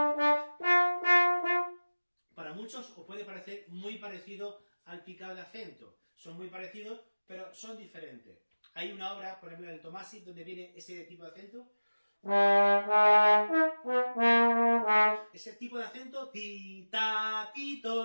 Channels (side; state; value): both; inverted; correlation -1.00